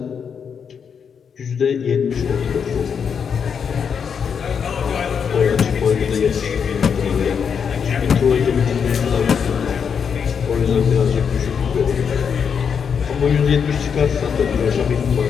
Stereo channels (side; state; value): right; quieter; 6.9 dB